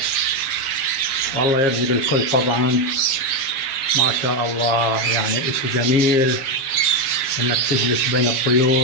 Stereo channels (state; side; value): late; right; 7.4 ms